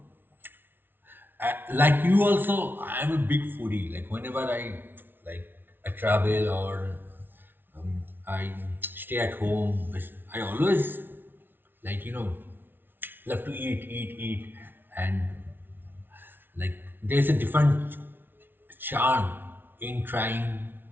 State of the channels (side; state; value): left; late; 0.10 ms